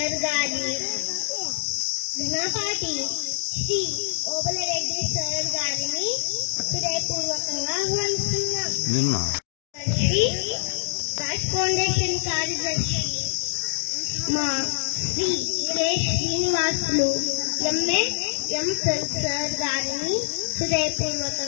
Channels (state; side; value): silent; right; digital silence